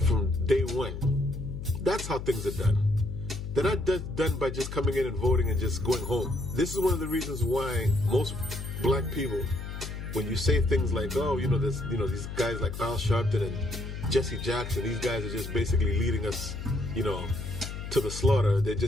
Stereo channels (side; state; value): left; noise; hum, 8 dB below the sound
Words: from day one. That's how things are done. They're not done by just coming in and voting and just going home. This is one of the reasons why most black people, when you say things like, oh, these guys like Al Sharpton and Jesse Jackson, these guys are just basically leading us, to the slaughter. They're